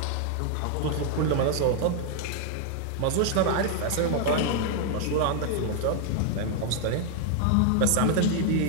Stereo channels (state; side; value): different; both; correlation 0.00